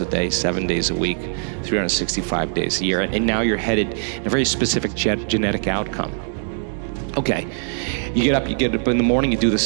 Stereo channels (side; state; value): left; silent; digital silence